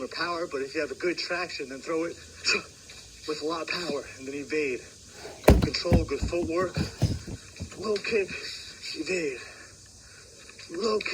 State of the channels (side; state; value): both; identical; correlation 1.00